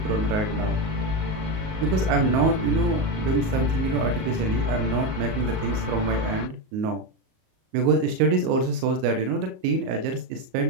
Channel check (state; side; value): late; left; 38 ms